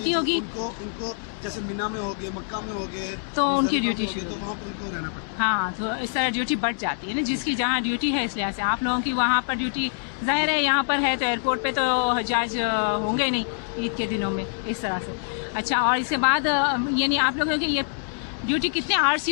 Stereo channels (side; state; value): right; silent; digital silence